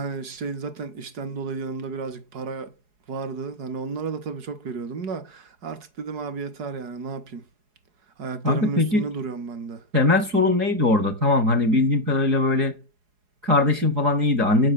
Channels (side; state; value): left; late; 4.8 ms